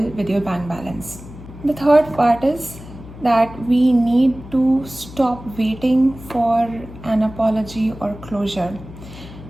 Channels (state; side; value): noise; left; hum, 16 dB below the sound